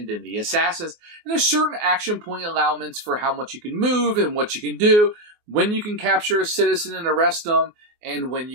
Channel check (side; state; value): left; late; 24 ms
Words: then the assassins. And there's certain action point allowments for how much you can move and what you can do, when you can capture a citizen and arrest them, and when